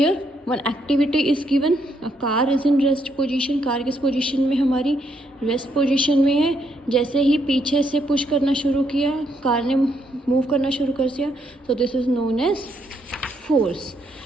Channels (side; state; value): both; normal; correlation 0.75